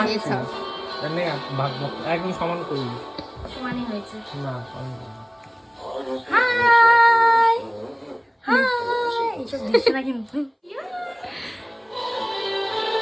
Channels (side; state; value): both; identical; correlation 1.00